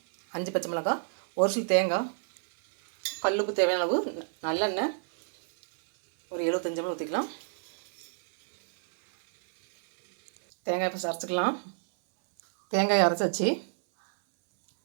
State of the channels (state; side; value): silent; left; 59 dB below the other